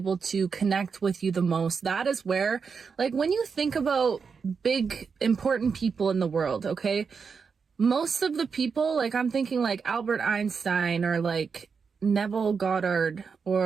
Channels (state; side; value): quieter; left; 5.7 dB